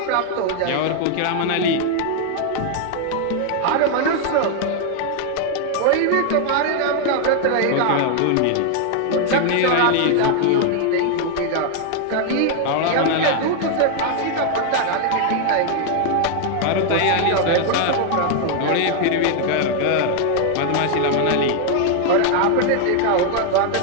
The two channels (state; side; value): different; both; correlation 0.00